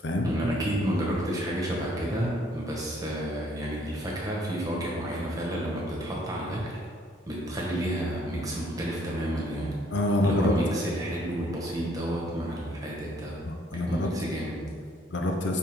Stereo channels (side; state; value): both; normal; correlation 0.64